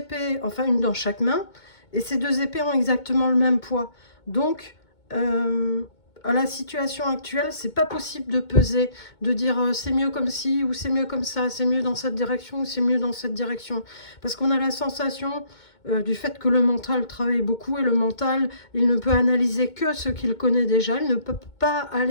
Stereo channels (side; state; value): right; late; 2.2 ms